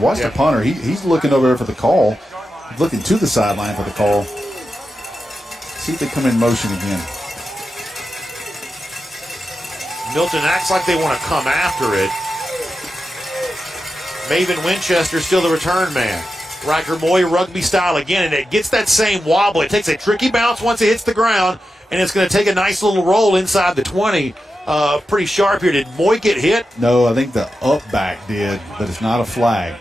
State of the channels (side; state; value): both; normal; correlation 0.90